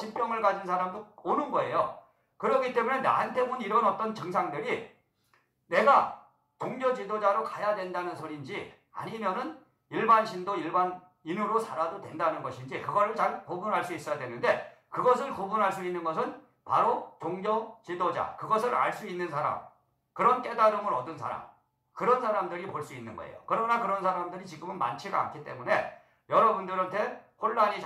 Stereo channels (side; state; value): both; identical; correlation 1.00